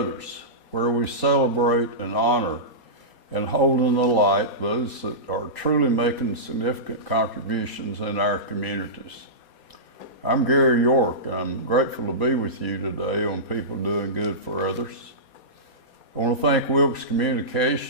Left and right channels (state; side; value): late; right; 4.2 ms